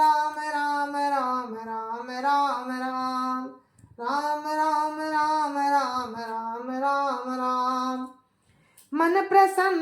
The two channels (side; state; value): both; identical; correlation 1.00